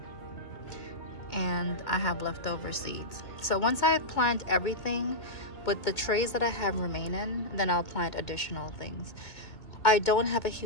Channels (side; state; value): right; late; 2.1 ms